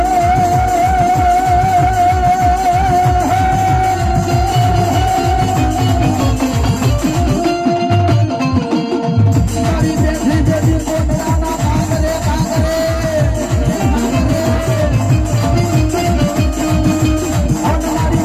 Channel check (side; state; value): both; identical; correlation 1.00